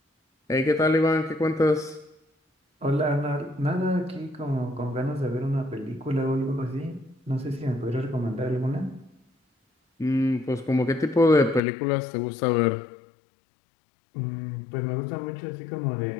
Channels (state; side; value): drops out; right; at 11.6 s